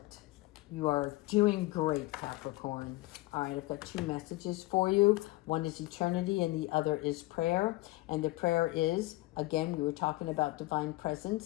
You are doing great, Capricorn. All right, I've got two messages for you. One is eternity and the other is prayer. And the prayer is, again, we were talking about divine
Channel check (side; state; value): right; quieter; 20.1 dB